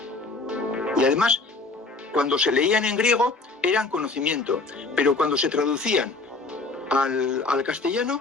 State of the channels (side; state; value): right; quieter; 3.7 dB